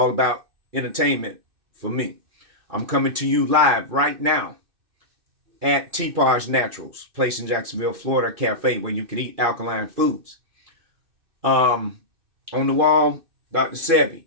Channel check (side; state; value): left; late; 2.6 ms